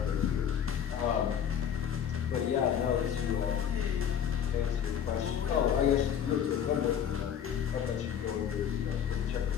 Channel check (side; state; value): right; quieter; 8.7 dB